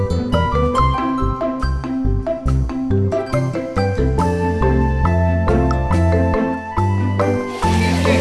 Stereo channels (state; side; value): identical; both; correlation 1.00